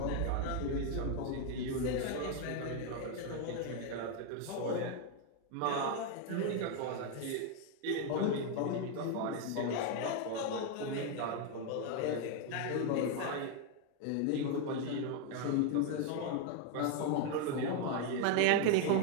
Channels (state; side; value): different; both; correlation 0.01